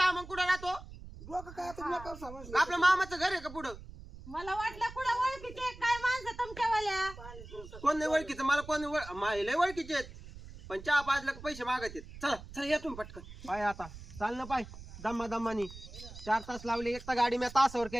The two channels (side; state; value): right; noise; rumble, 15 dB below the sound